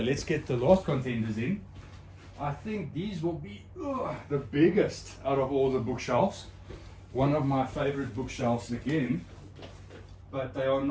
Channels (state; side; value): identical; both; correlation 1.00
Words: get the last contenders in. I think these will be the biggest out of all the bookshelves. One of my favorite bookshelves again, but they are